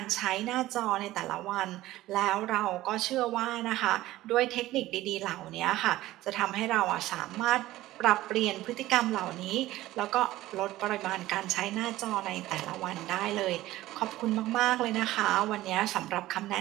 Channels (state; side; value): quieter; left; 16.2 dB